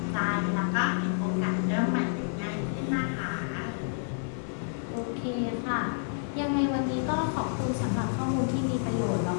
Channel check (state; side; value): silent; right; 58 dB below the other